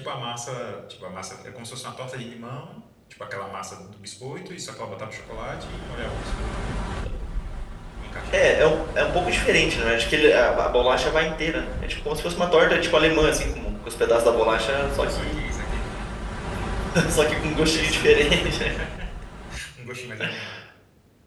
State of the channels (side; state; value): both; identical; correlation 1.00